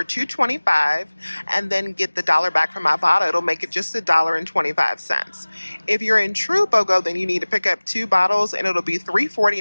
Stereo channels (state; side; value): inverted; both; correlation -1.00